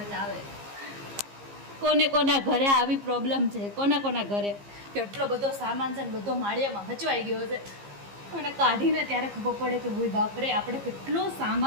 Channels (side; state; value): left; late; 15 ms